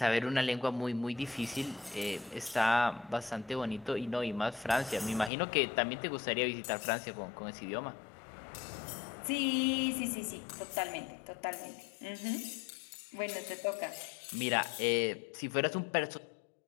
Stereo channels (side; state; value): right; drops out; at 5.3 s